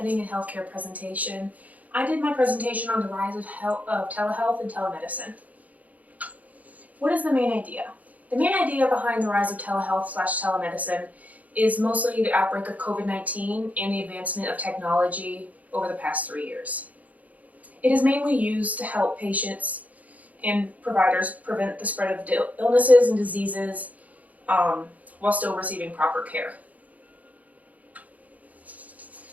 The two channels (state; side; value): late; left; 0.074 ms